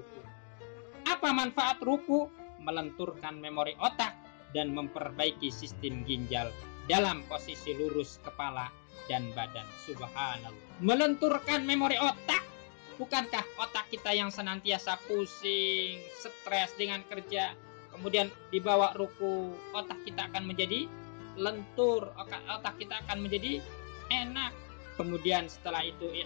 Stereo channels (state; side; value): silent; right; 54 dB below the other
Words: Apa manfaat ruku? Melenturkan memori otak dan memperbaiki sistem ginjal dalam posisi lurus kepala dan badan. Subhanallah. Melenturkan memori otak. Bukankah otak kita yang senantiasa pusing, stres dengan kerja, kemudian dibawa ruku, otak kita akan menjadi lentur, otak kita akan menjadi enak. Kemudian setelah itu